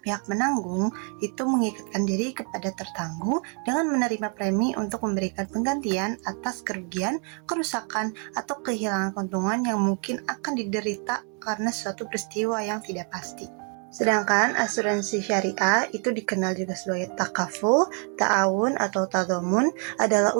menanggung itu mengikatkan diri kepada tertangguh dengan menerima premi untuk memberikan penggantian atas kerugian, kerusakan, atau kehilangan keuntungan yang mungkin akan diderita karena suatu peristiwa yang tidak pasti. Sedangkan asuransi syariah itu dikenal juga sebagai takaful, ta'awun, atau tadhamun adalah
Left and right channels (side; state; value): left; quieter; 39.9 dB